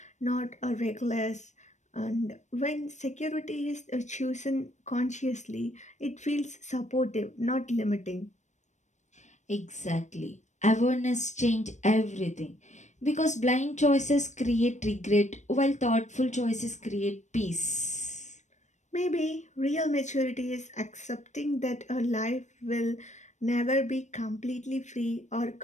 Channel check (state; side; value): late; right; 0.34 ms